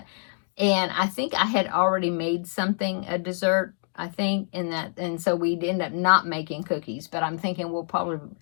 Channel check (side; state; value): right; silent; 61 dB below the other